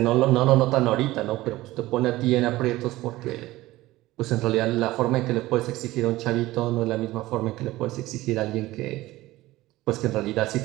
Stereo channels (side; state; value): left; quieter; 17.7 dB